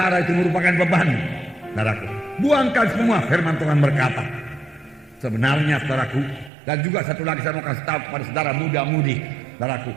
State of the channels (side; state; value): left; drops out; at 6.5 s